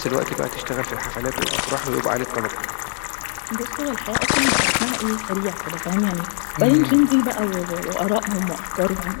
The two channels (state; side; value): silent; right; digital silence